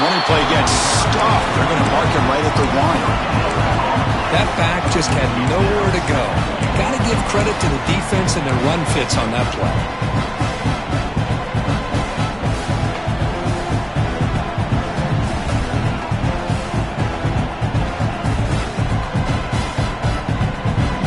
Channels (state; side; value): identical; both; correlation 1.00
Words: play gets stopped. They're going to mark him right at the 1. That back just had nowhere to go. Got to give credit to the defense and their run fits on that play.